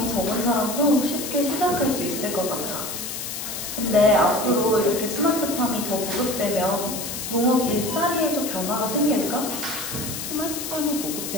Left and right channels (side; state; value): left; noise; hiss, 6 dB below the sound